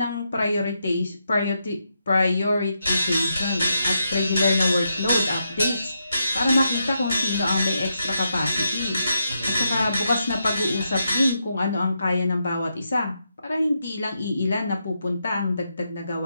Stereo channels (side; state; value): both; inverted; correlation -0.83